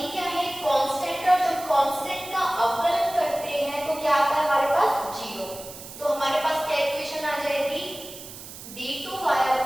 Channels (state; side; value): noise; right; hiss, 14 dB below the sound